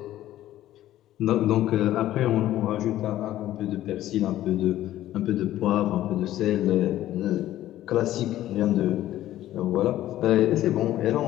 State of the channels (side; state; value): right; quieter; 13.7 dB